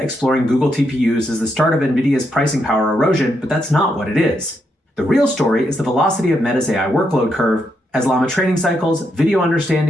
Google TPUs as the start of NVIDIA's pricing power erosion, but that's not what it is. The real story is the velocity of Meta's AI workload curve as Llama training cycles, video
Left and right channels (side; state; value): both; normal; correlation 0.80